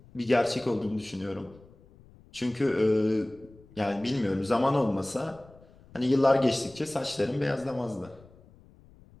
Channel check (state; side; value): noise; left; rumble, 25 dB below the sound